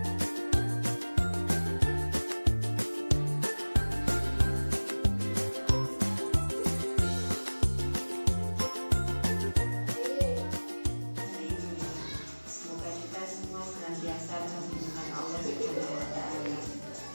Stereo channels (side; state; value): both; inverted; correlation -1.00